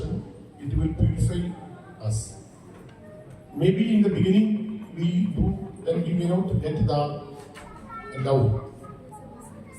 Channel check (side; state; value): both; identical; correlation 1.00